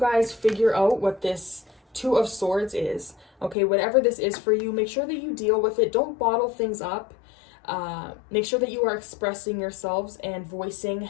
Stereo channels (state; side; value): drops out; right; at 3.6 s